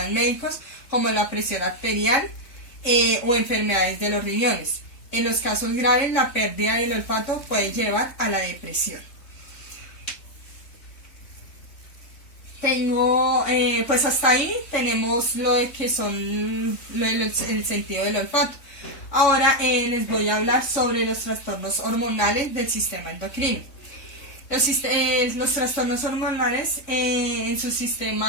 médicos como la presión arterial o enfermedades de los riñones. En los casos graves, la pérdida del olfato puede llevar a la depresión. Pues hasta ahí tenemos lo de que son el sentido del olfato. Ahora les voy a hablar sobre los trastornos hormonales del sistema endocrino. Los trastornos hormonales en su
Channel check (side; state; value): right; late; 3.5 ms